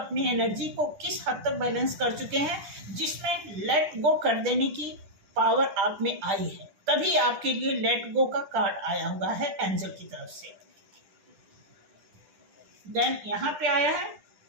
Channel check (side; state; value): left; late; 10 ms